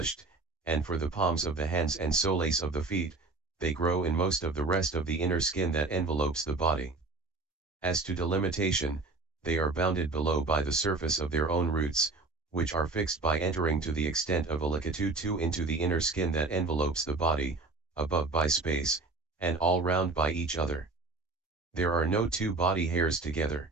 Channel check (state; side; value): quieter; left; 3.5 dB